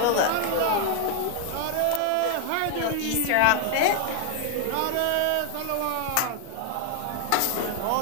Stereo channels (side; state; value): both; different; correlation 0.00